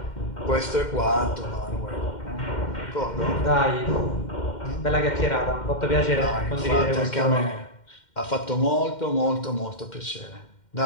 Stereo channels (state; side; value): late; right; 2.1 ms